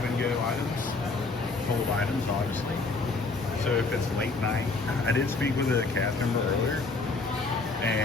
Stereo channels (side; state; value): right; quieter; 3.7 dB